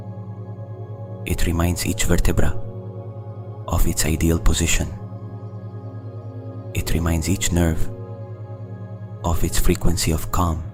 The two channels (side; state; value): both; identical; correlation 1.00